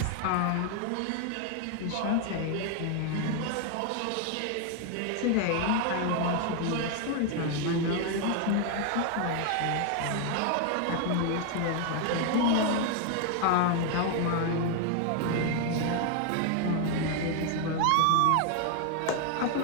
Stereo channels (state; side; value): different; both; correlation 0.01